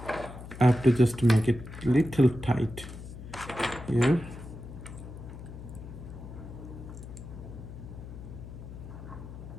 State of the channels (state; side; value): noise; left; hum, 12 dB below the sound